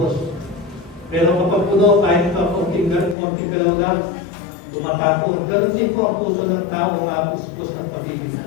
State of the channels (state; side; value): drops out; right; at 3.2 s